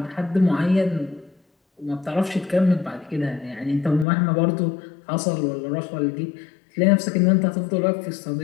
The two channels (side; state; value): right; drops out; at 4.0 s